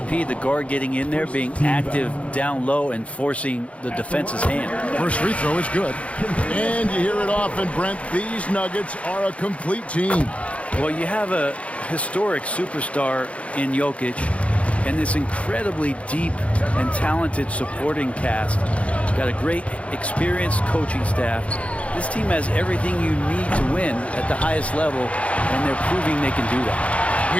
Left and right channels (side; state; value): right; late; 0.063 ms